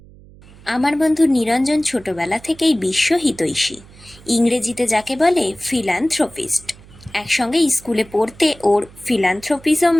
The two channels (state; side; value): noise; right; hum, 23 dB below the sound